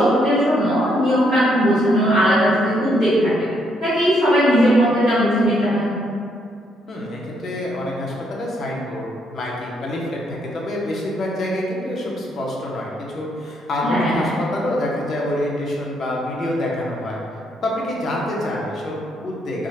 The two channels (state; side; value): normal; both; correlation 0.74